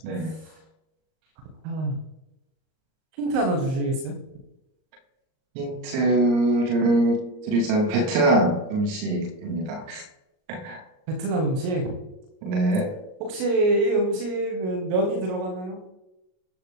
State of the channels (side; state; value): left; late; 38 ms